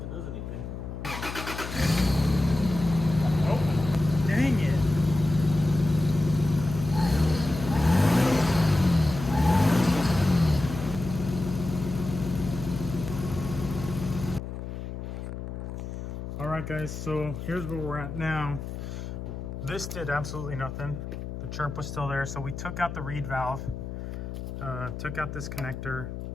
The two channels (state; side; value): noise; left; hum, 7 dB below the sound